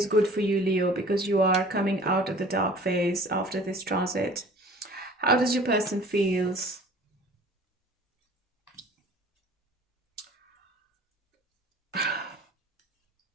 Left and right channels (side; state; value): both; normal; correlation 0.47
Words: good for you, Leo, because you are coming out of the dark phase after this transit. How does your person feels?